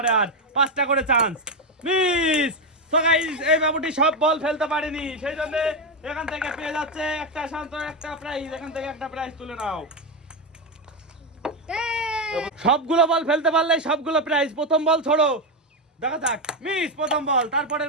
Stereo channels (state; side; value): normal; both; correlation 0.08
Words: আর 5টা করে চান্স, মিস। সো গাইস এই বাবুটি সব বল ফেলতে পারেনি, সেই জন্য এখান থেকে পেয়ে যাচ্ছে একটা শান্ত, একটা প্রাইজ। এখান থেকে একটা প্রাইজ তুলে নাও। সবগুলো বল ফেলতে পারলে সবগুলো প্রাইজ। প্রথম বল ছোড়ো, দেখা যাক। মিস প্রথম বল, তারপরের